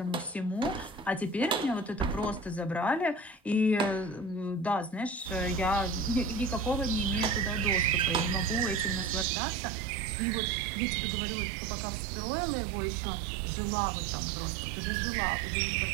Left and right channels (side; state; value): left; drops out; at 9.2 s